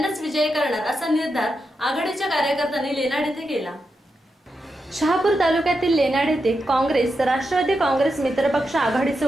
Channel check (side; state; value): both; normal; correlation 0.87